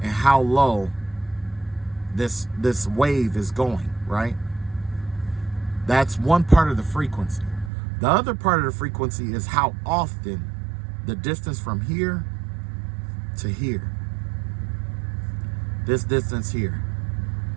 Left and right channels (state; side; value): drops out; left; at 7.7 s